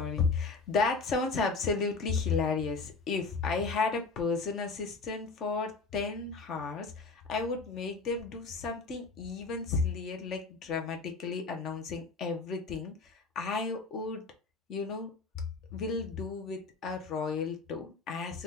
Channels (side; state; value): right; quieter; 4.1 dB